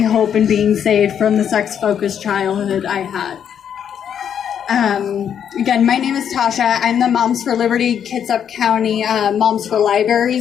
hope in being saved from the sex-focused childhood I had. Again, my name is Tasha. I'm the Moms for Liberty Kitsap County Moms for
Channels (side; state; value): right; quieter; 8.6 dB